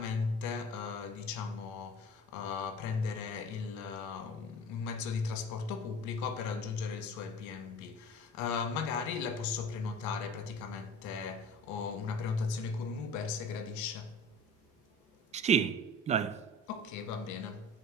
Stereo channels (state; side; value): normal; both; correlation 0.40